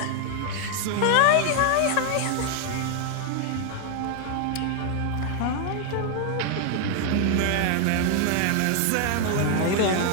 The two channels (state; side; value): different; both; correlation 0.00